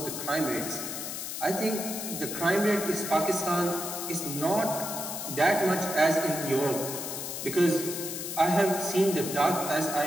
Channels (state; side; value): noise; left; hiss, 6 dB below the sound